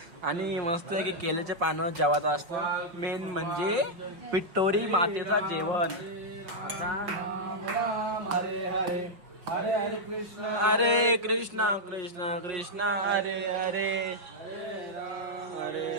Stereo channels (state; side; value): late; left; 5.3 ms